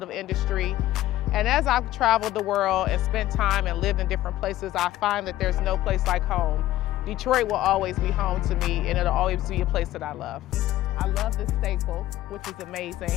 industry. And as I've traveled the world and spent time and lived in different places, I find that there's no place like home. Detroit will always be home to me, and it'll always be a place that I love. I love this staple, which is amazing.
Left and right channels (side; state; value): right; quieter; 14.8 dB